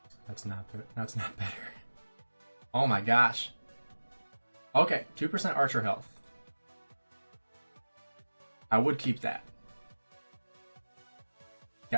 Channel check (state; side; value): inverted; both; correlation -1.00